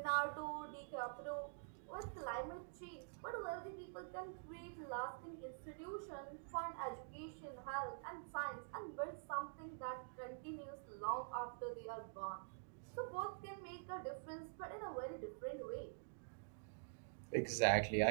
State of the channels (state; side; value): silent; left; digital silence